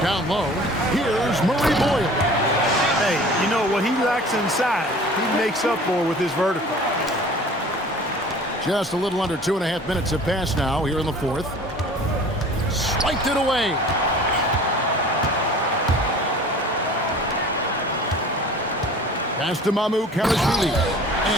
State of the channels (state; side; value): normal; both; correlation 0.45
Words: Down low, here's Murray Boyle. Hey, you know what he lacks inside, he makes up for with his vertical. Just a little under 2.5 minutes have passed now here in the fourth. Swiped it away. Pass to MyCareer.